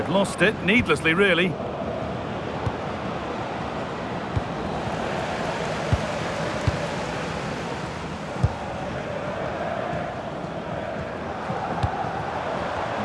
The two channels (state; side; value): identical; both; correlation 1.00